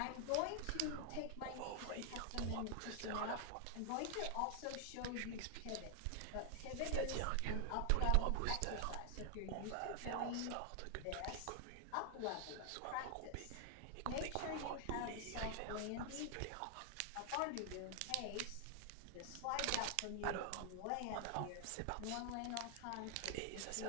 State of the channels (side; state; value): both; different; correlation 0.00